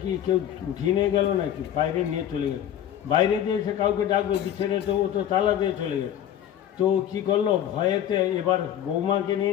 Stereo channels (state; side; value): quieter; right; 10.6 dB